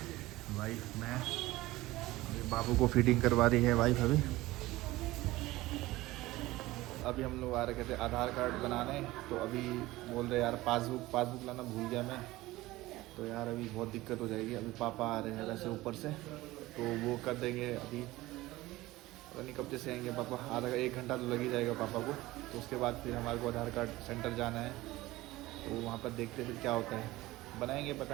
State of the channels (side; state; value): left; quieter; 18.4 dB